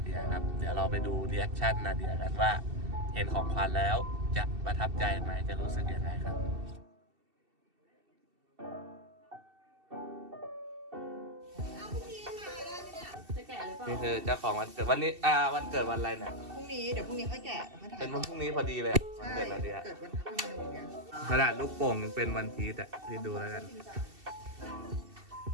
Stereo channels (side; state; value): left; late; 2.7 ms